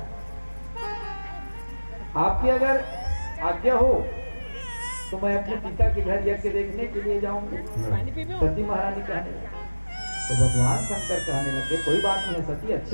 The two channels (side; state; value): both; inverted; correlation -1.00